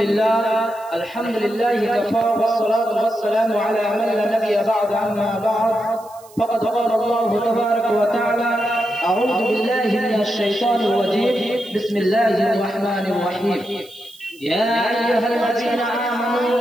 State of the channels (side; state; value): right; noise; hiss, 25 dB below the sound